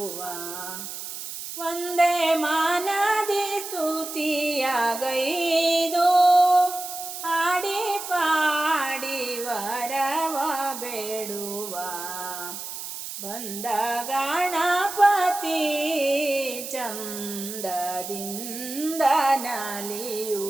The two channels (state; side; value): noise; right; hiss, 8 dB below the sound